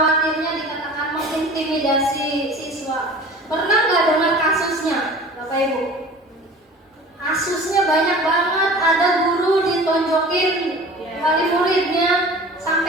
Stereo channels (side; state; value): both; normal; correlation 0.42